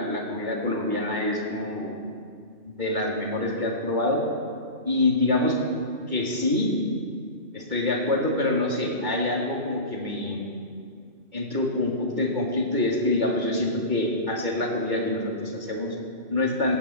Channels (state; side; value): late; left; 2.2 ms